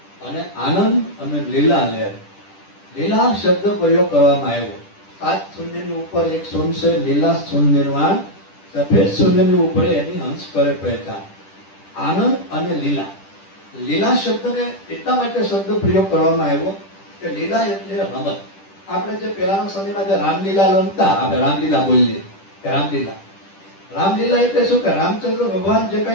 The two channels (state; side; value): late; right; 10 ms